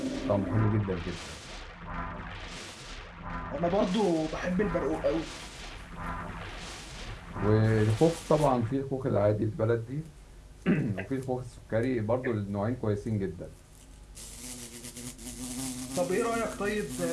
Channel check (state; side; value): identical; both; correlation 1.00